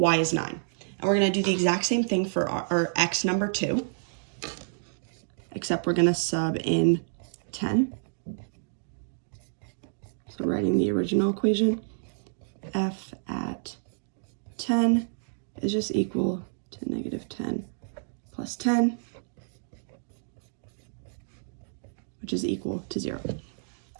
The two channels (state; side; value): silent; left; digital silence